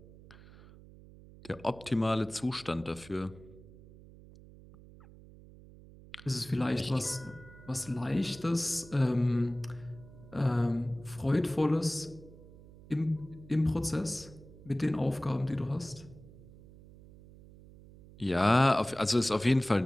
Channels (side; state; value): right; noise; hum, 20 dB below the sound